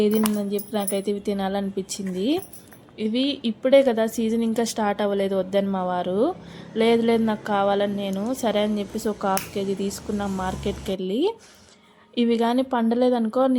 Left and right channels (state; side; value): identical; both; correlation 1.00